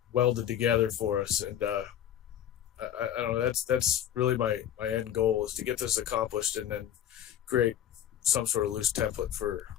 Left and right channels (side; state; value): right; quieter; 10.6 dB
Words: welded together for us. And I don't know, that's really my end goal, is to get this accomplished and then create some sort of loose template for